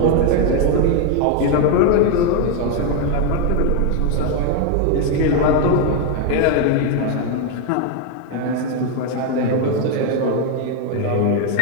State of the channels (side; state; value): both; different; correlation 0.01